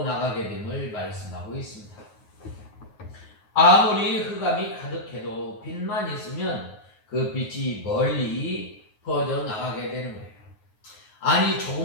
나가게 됨을 말씀하고 있습니다. 아무리 흑암이 가득해도 빛만 있으면 그 빛이 멀리 퍼져 나가게 되는 거예요. 아니,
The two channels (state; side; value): late; right; 9.5 ms